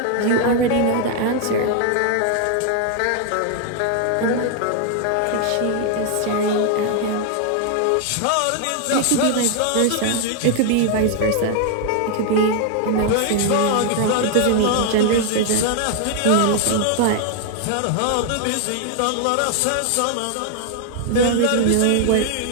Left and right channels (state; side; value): different; both; correlation 0.00